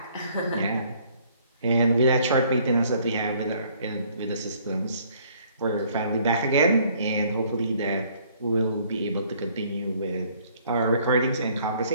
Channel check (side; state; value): both; inverted; correlation -0.61